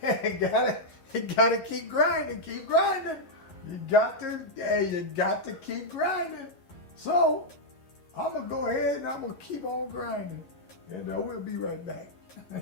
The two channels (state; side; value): late; right; 11 ms